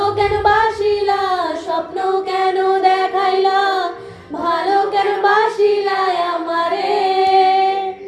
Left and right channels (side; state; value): both; identical; correlation 1.00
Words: কেন বাসিলা স্বপ্ন কেন দেখাইলা ভালো কেন বাসিলা আমারে